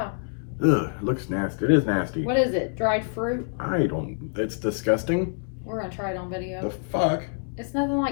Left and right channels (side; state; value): right; silent; 61 dB below the other